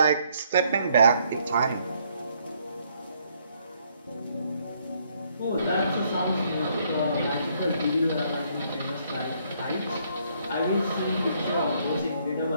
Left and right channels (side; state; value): both; inverted; correlation -0.69